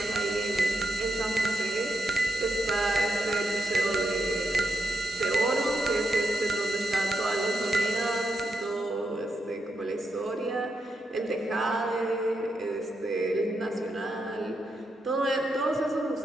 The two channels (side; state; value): both; normal; correlation 0.83